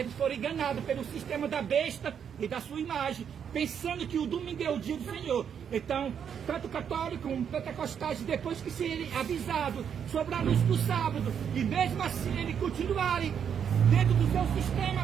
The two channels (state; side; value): quieter; left; 7.9 dB